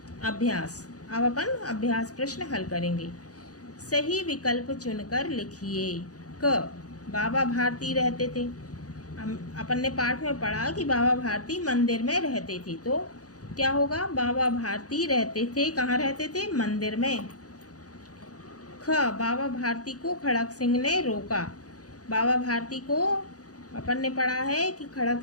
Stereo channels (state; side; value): late; right; 0.67 ms